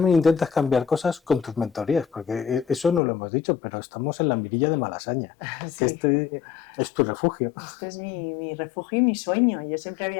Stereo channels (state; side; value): drops out; right; at 3.0 s